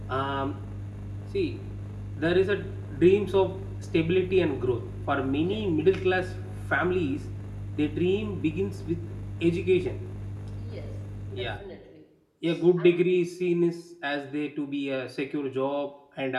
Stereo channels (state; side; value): identical; both; correlation 1.00